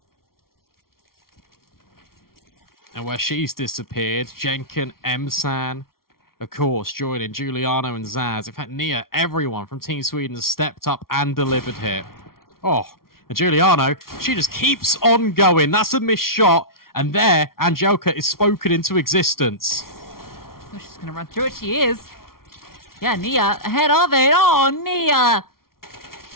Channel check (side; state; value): right; late; 0.93 ms